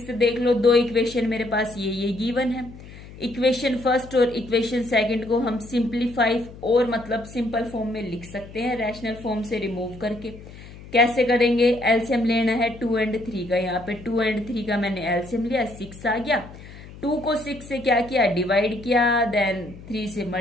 देख लो, दो इक्वेशन मेरे पास ये गिवन है। इक्वेशन फर्स्ट और इक्वेशन सेकंड को हम सिंप्लीफाई और मतलब सिंपल फॉर्म में लिख सकते हैं, रैशनल फॉर्म से रिमूव करके। कैसे करेंगे? एलसीएम लेना है 2 और 3 का। यहाँ पे 2 और 3 का मैंने एलसीएम लिया, 6 आ गया। 2 को 6 से क्या किया? डिवाइड किया, देन 3 से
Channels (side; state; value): left; noise; hum, 17 dB below the sound